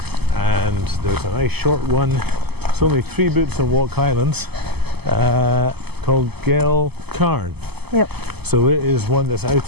and there's a nice short one, it's only 3 boots on walk highlands, called Geal Charn. Yep. So it is one that's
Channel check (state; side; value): late; left; 0.97 ms